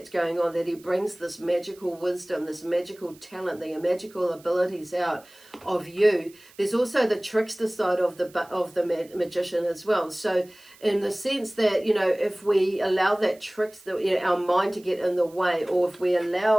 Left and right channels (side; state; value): right; noise; hiss, 25 dB below the sound